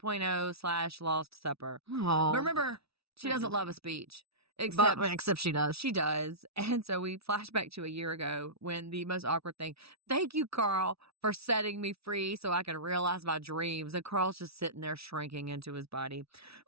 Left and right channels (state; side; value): late; left; 0.77 ms